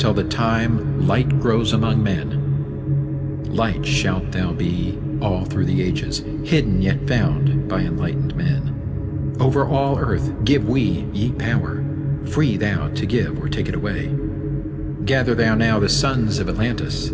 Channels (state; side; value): identical; both; correlation 1.00